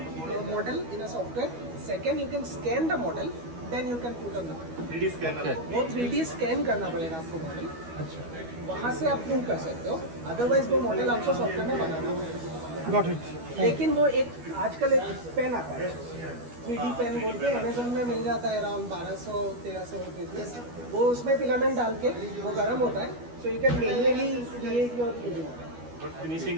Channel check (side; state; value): left; late; 12 ms